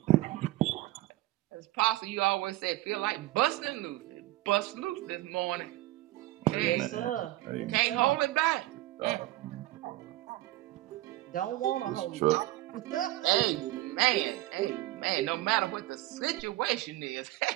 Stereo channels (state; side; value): quieter; left; 17.1 dB